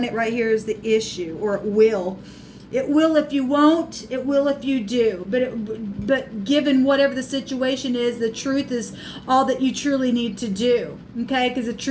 it right here is the issue, or it will. It will if you won't. It will if you do. But given whatever the situation is, the truth is all that you truly need to do. Okay, because the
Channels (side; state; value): both; identical; correlation 1.00